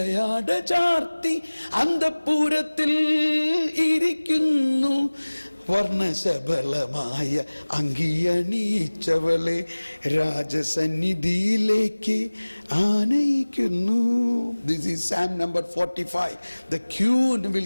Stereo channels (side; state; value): both; inverted; correlation -1.00